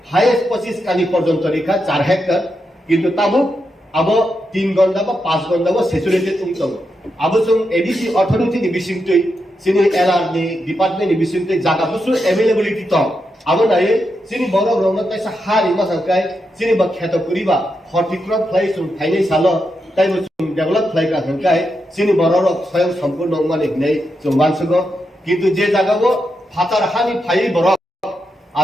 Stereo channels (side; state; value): both; normal; correlation 0.85